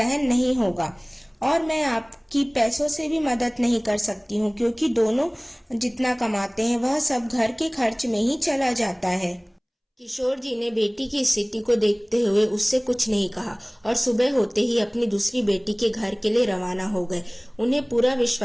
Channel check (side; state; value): both; identical; correlation 1.00